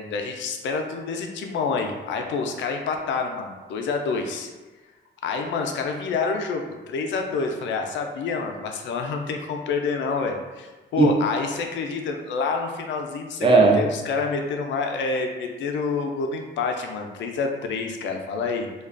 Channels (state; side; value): normal; both; correlation 0.34